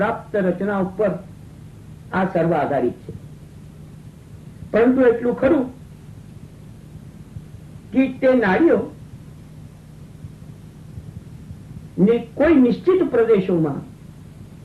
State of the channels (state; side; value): identical; both; correlation 1.00